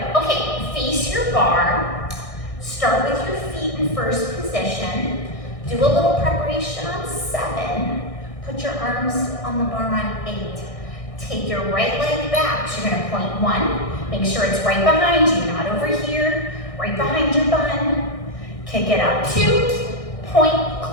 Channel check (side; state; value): right; late; 1.6 ms